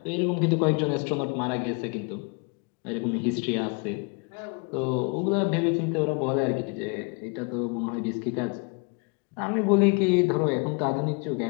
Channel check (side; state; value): right; quieter; 33.2 dB